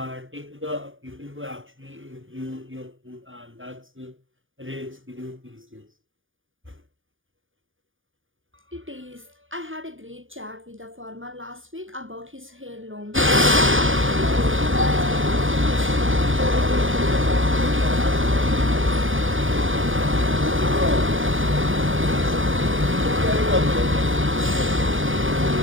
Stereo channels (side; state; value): left; late; 0.58 ms